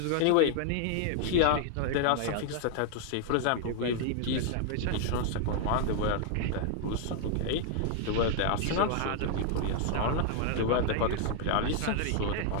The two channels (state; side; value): different; both; correlation 0.00